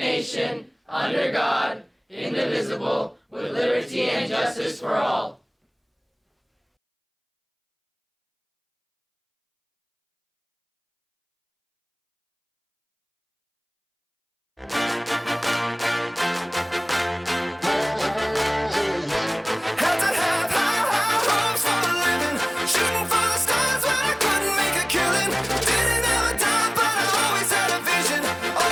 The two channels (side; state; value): both; identical; correlation 1.00